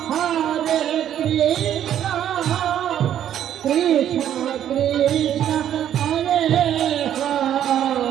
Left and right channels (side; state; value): left; quieter; 10.5 dB